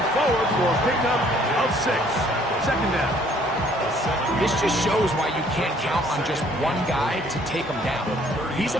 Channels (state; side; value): normal; both; correlation 0.60